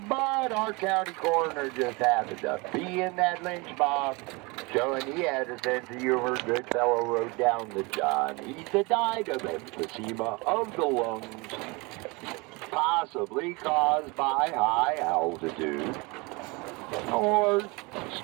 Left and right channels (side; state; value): left; quieter; 26.8 dB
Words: But our county coroner just happened to be in that lynch mob, showing he had a sense of humor. Goodfellow wrote down that John Heath had died of emphysema of the lungs, possibly caused by high altitude or